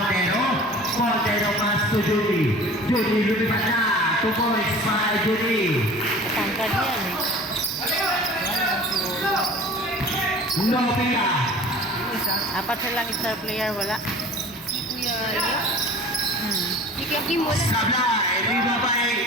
Montero, pass to Judy, lumipat na, 2 points para kay Judy. Tangkad yan eh. Nopia. Apat silang star player, wala. Si Kuya Rio. Si Kuya Kim wala. Sablay,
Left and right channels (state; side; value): normal; both; correlation 0.42